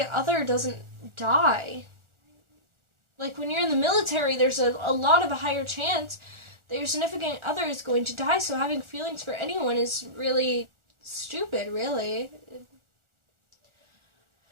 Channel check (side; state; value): left; late; 1.4 ms